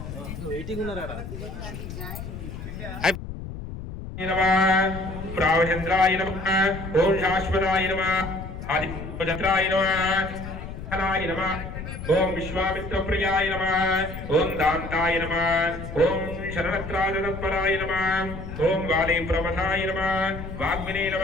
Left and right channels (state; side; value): noise; left; rumble, 9 dB below the sound